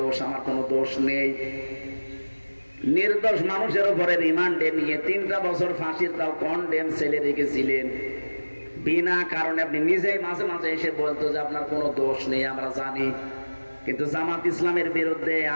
আমার কোনো দোষ নেই। নির্দোষ মানুষের উপরে রিমান্ডে নিয়ে 3টা বছর ফাঁসির তাও কন্ডেম ছেলে রেখেছিলেন বিনা কারণে। আপনি নিজেই মাঝে মাঝে এসে বলতো যে আপনার কোনো দোষ নেই, আমরা জানি, কিন্তু জামাত ইসলামের বিরুদ্ধে,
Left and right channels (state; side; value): inverted; both; correlation -1.00